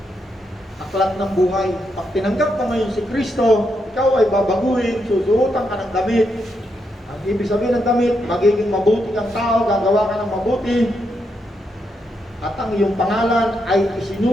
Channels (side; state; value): both; normal; correlation 0.81